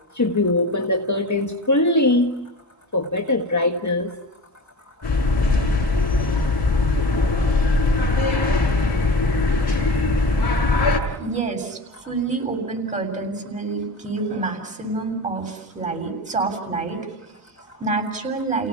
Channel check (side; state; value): both; normal; correlation 0.29